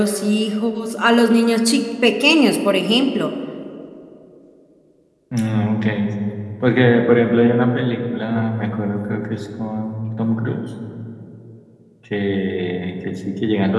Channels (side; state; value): both; identical; correlation 1.00